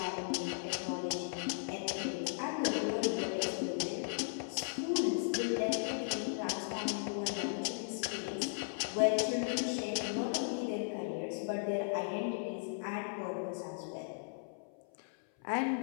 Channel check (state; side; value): silent; right; 53 dB below the other